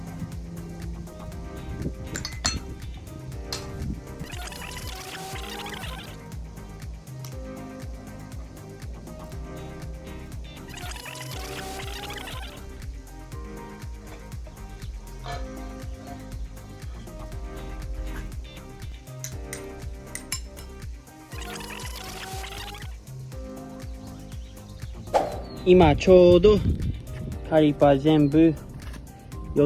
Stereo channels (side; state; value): both; identical; correlation 1.00